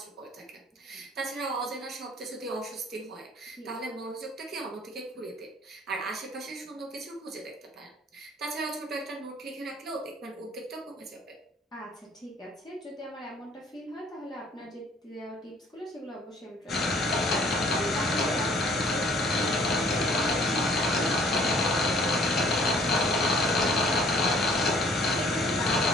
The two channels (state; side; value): normal; both; correlation 0.57